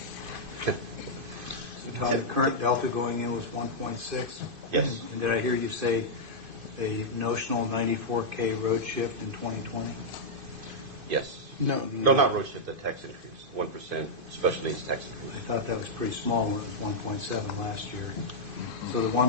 So Todd, the current delta going in was 1.6? Yes. And did I hear you say a notional 94K road shift in 2020? Yes. No, not road shift, the tax increase, 1% special needs tax increase. I thought that was pretty small when it was 1.7 last year. So the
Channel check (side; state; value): left; late; 2.5 ms